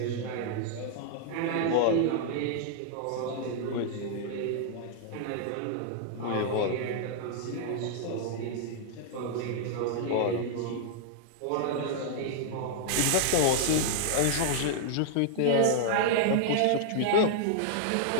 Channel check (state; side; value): different; both; correlation -0.01